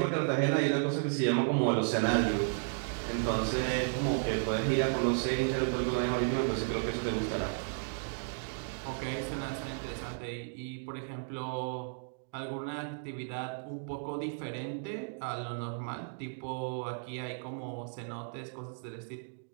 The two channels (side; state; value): left; silent; digital silence